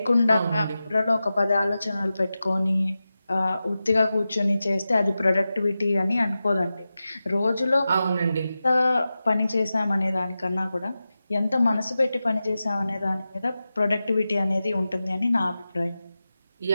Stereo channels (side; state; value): both; inverted; correlation -0.93